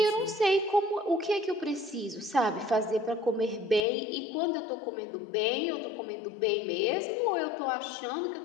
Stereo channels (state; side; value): drops out; right; at 3.9 s